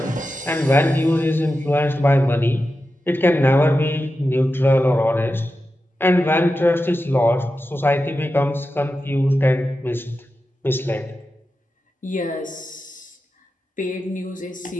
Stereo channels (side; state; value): both; normal; correlation 0.91